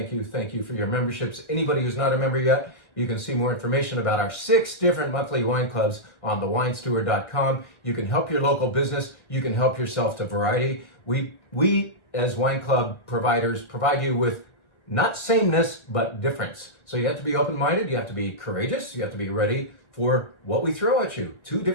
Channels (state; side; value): late; right; 1.4 ms